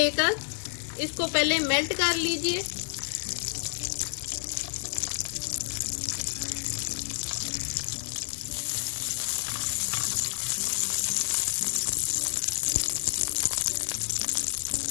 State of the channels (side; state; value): right; silent; digital silence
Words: इसको पहले मेल्ट कर लीजिए।